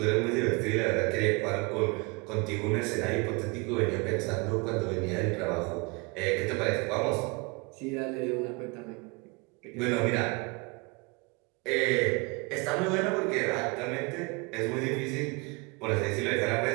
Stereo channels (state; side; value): quieter; left; 28.5 dB